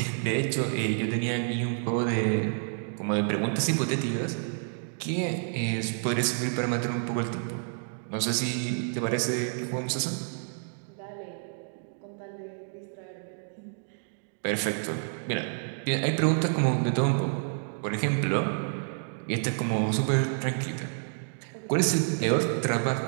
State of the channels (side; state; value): left; silent; digital silence